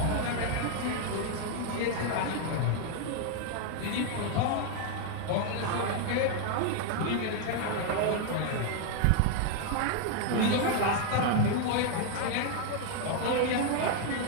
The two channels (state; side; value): different; both; correlation 0.00